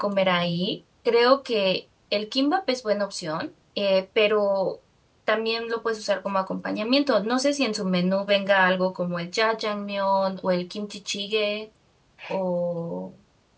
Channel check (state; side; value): identical; both; correlation 1.00